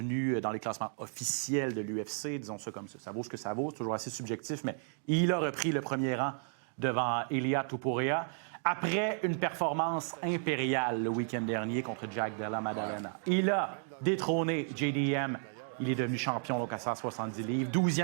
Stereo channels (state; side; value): silent; left; 55 dB below the other